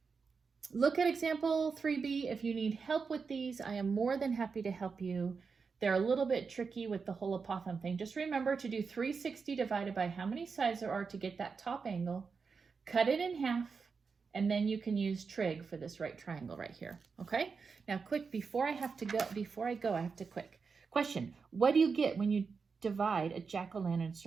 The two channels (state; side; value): quieter; left; 5.2 dB